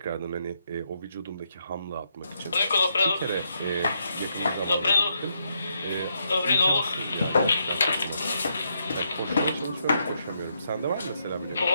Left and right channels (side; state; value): both; inverted; correlation -0.78